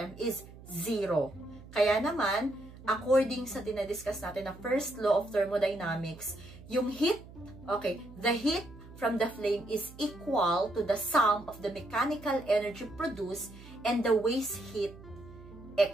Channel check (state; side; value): noise; right; hum, 18 dB below the sound